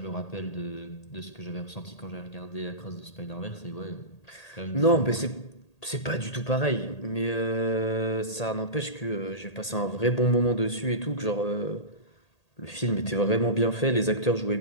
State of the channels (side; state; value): right; late; 1.8 ms